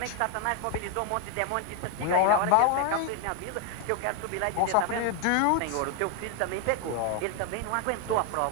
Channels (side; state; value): both; different; correlation 0.01